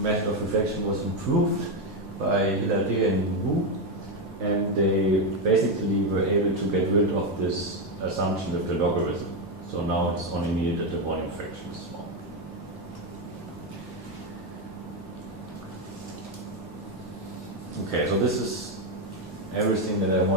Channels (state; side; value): normal; both; correlation 0.08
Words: of reflection was improved by Hilaire and Wu, and they basically were able to get rid of this assumption with the logarithm. So now it's only needed that the volume fraction is small. Okay, so this is everything that I